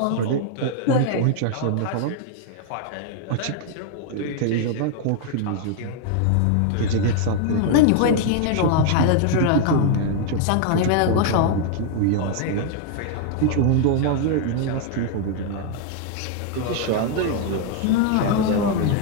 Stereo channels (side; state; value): both; different; correlation 0.00